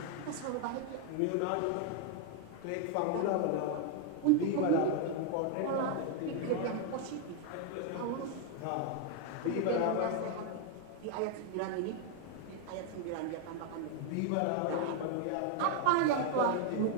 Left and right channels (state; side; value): different; both; correlation 0.00